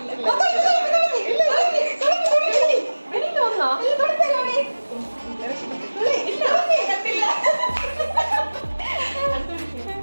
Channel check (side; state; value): both; inverted; correlation -1.00